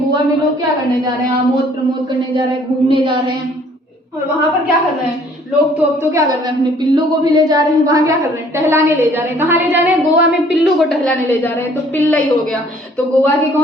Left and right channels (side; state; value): both; normal; correlation 0.58